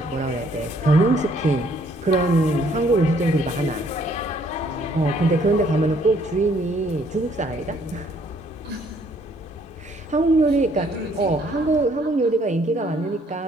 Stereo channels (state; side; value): normal; both; correlation 0.64